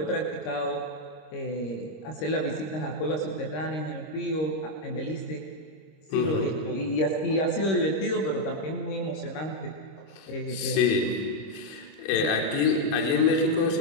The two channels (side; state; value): right; late; 26 ms